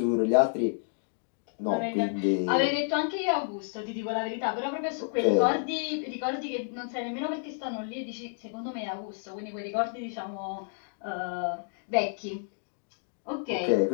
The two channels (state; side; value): silent; right; digital silence